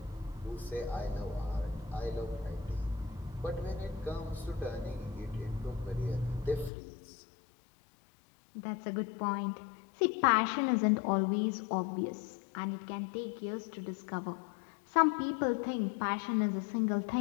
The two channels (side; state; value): right; drops out; at 6.7 s